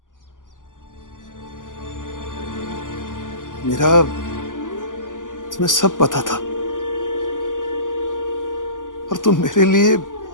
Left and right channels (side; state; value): right; late; 0.88 ms